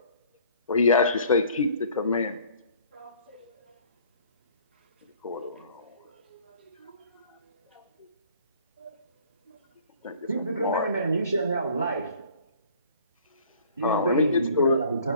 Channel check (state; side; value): inverted; both; correlation -0.54